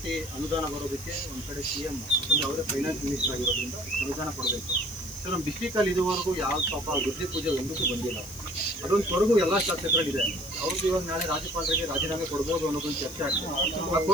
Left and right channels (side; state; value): left; noise; hiss, 15 dB below the sound